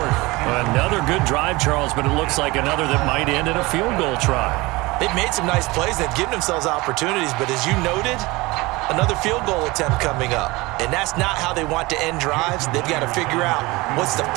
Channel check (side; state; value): left; quieter; 22.3 dB